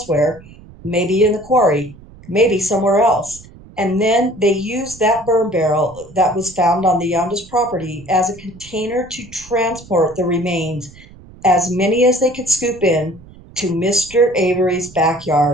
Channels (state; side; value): noise; right; rumble, 21 dB below the sound